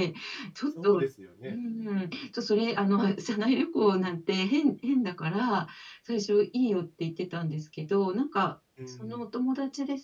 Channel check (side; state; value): both; identical; correlation 1.00